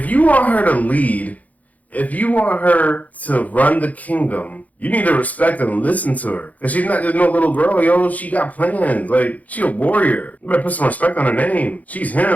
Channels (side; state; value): right; late; 0.074 ms